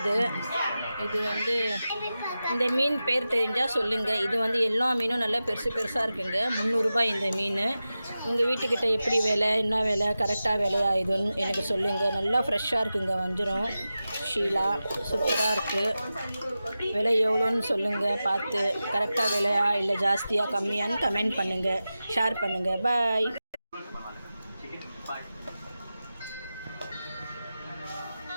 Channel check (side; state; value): both; inverted; correlation -0.93